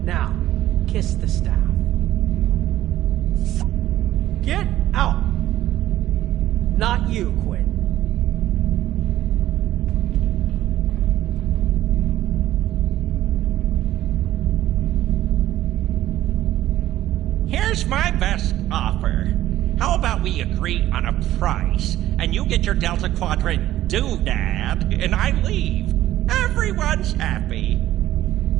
Now, kiss the staff. Get out! Not you, Quinn. Here's my best offer. How about we agree on a price, and you get your Delta Quadrant doodad, and I leave? Everyone's happy.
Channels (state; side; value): quieter; left; 13.9 dB